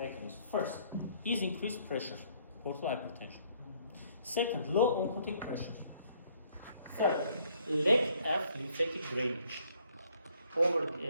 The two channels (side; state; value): both; inverted; correlation -0.65